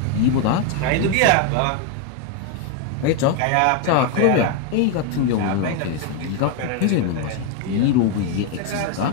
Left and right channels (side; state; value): both; different; correlation 0.01